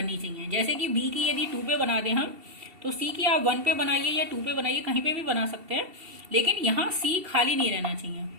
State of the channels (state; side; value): late; left; 2.7 ms